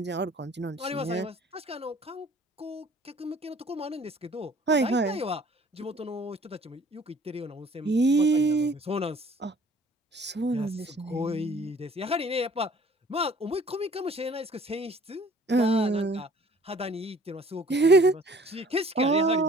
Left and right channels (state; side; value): normal; both; correlation 0.53